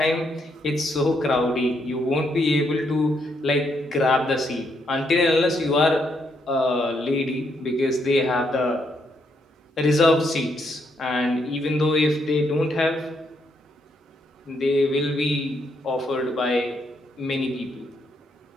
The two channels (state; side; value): normal; both; correlation 0.76